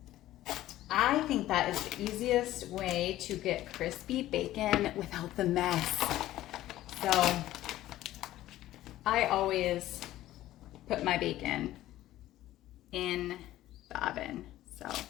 I think that is the easiest way to get crispy bacon without the mess. So I always put my bacon in the oven. So I'm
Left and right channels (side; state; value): right; quieter; 14.6 dB